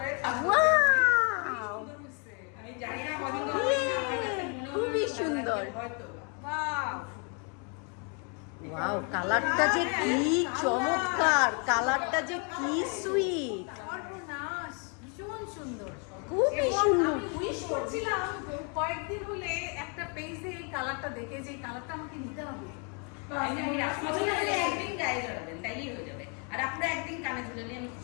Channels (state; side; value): quieter; right; 37.5 dB